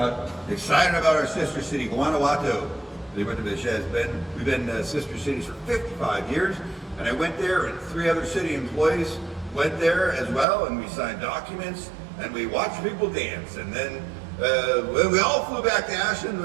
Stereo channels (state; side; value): drops out; left; at 10.5 s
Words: our sister city, Guanajuato. We've been sister cities for 55 years, and I went there, and 3 other city employees went there as well, and we signed documents, and we watched people dance, and then we all flew back to Ashland.